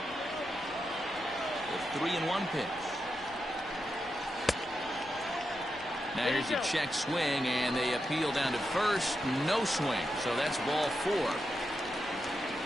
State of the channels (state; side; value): noise; left; rumble, 23 dB below the sound